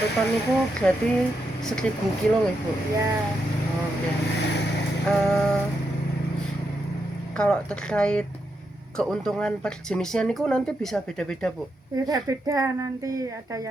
ton itu berarti 1000 kilo nih Bu. ya, Oke. Eh, Kalau terkait keuntungan per jenisnya niku nanti bisa beda-beda Bu. beda-beda nanti. Ada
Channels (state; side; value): normal; both; correlation 0.83